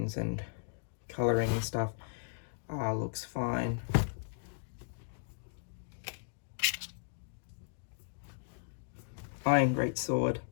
and coloring and stuff looks fine. Iron greatsword.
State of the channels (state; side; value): silent; right; digital silence